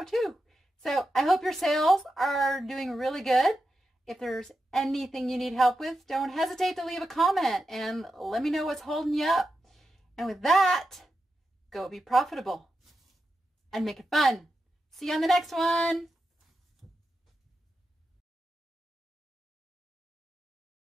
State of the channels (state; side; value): normal; both; correlation 0.89